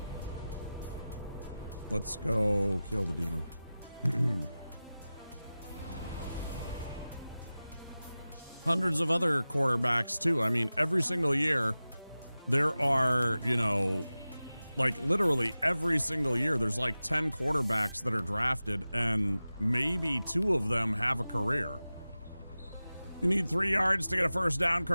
Let's go kill the demon. Hundreds of other quarterbacks too. I mean, every single year there are, you know, like literally every single year there's like 10 quarterbacks that are drafted, and maybe 2 of them have a career. You need 3 yards to get a first down,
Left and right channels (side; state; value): both; inverted; correlation -0.96